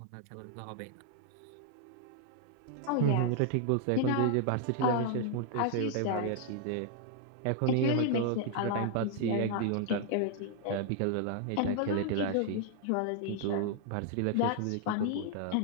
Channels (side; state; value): both; different; correlation 0.00